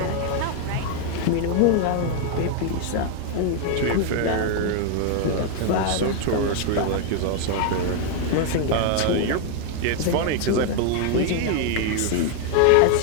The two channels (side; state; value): both; different; correlation 0.01